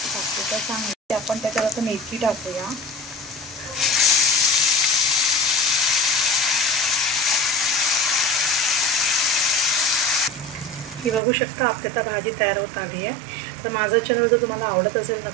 टाकते तर चांगली। आपण त्याच्यात आता मेथी टाकूया। ही बघू शकता आपली आता भाजी तयार होत आली आहे। तर माझा चॅनल जर तुम्हाला आवडत असेल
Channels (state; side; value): drops out; left; at 11.2 s